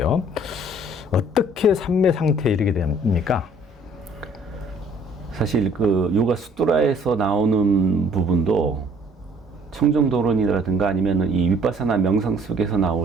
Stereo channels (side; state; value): both; normal; correlation 0.57